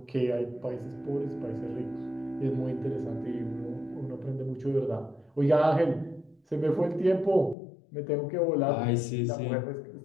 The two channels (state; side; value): drops out; right; at 7.6 s